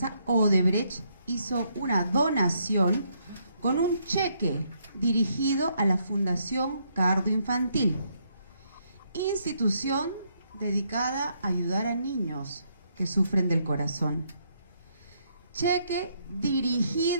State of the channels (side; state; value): both; inverted; correlation -0.73